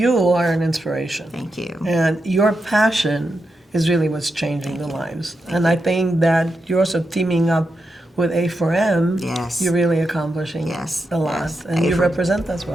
are an inspiration. Thank you. And your passion is really what's changing the lives. And I think that you're also teaming up with A4M, yes, you're really accomplishing a lot, and you represent us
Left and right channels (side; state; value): both; normal; correlation 0.87